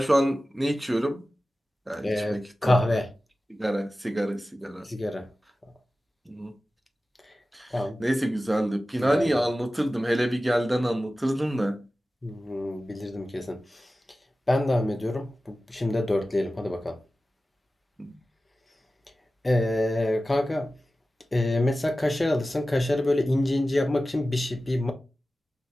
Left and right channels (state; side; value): normal; both; correlation 0.95